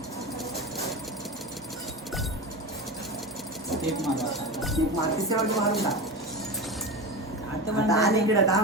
स्टेप मारू आता. एक मार्केटच्या वरती मारून टाक. आता आता आणि इकडे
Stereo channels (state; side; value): normal; both; correlation 0.25